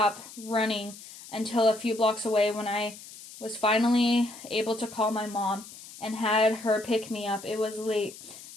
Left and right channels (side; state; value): left; noise; hiss, 16 dB below the sound